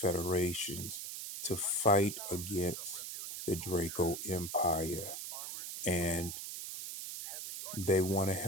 to fight against the Draco Empire. And they want to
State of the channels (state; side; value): noise; right; hiss, 7 dB below the sound